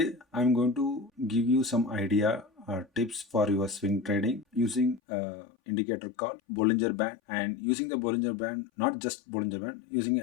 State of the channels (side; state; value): right; drops out; at 5.0 s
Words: I'm going to give you some idea or tips for your swing trading using indicator called Bollinger Band, and using the Bollinger Band, not just Bollinger Band, using